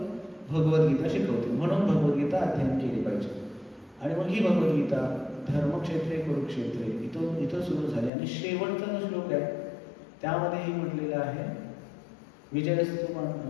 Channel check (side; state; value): right; drops out; at 8.1 s